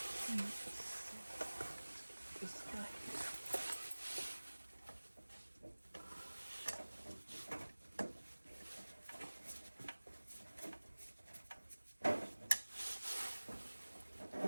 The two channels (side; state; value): both; inverted; correlation -1.00